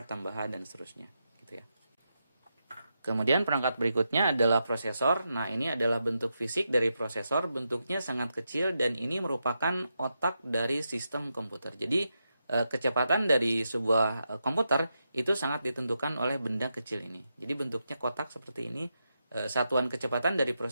tambahan dan seterusnya, gitu ya. Kemudian perangkat berikutnya adalah prosesor. Nah, ini adalah bentuk fisik dari prosesor, bentuknya sangat kecil dan ini merupakan otak dari sistem komputer. Jadi kecepatan dari sebuah komputer itu sangat ditentukan oleh benda kecil ini. Jadi bentuknya kotak seperti ini. Satuan kecepatan dari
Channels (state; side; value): inverted; both; correlation -0.86